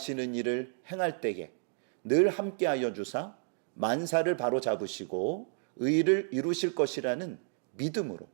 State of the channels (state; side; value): silent; left; digital silence